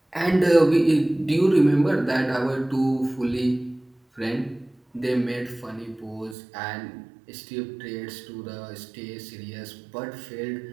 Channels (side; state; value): left; drops out; at 6.4 s